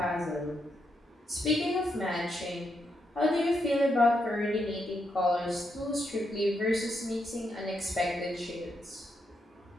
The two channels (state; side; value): normal; both; correlation 0.81